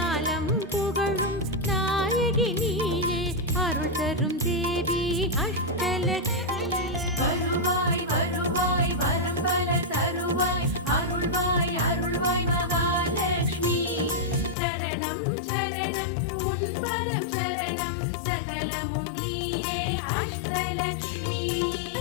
புகழும் நாயகி நீயே அருள் தரும் தேவி அஷ்டலக்ஷ்மி வருவாய் வருவாய் வரம் பல தருவாய் அருள்வாய் அருள்வாய் மகாலட்சுமி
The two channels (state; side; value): drops out; right; at 14.6 s